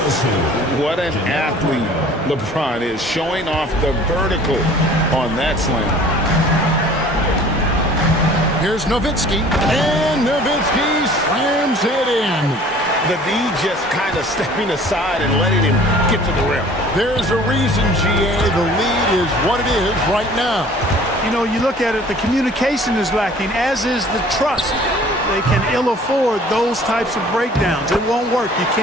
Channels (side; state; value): both; normal; correlation 0.50